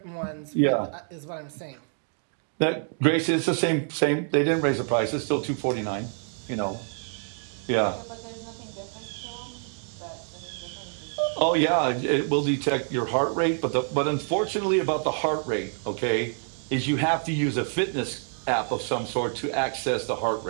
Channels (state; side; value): silent; left; 60 dB below the other